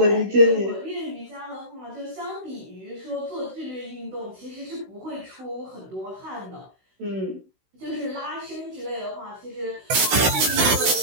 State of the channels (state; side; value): late; left; 16 ms